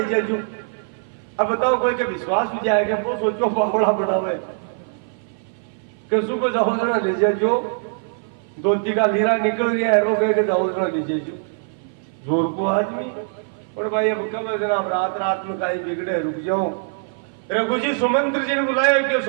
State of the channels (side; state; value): left; silent; 56 dB below the other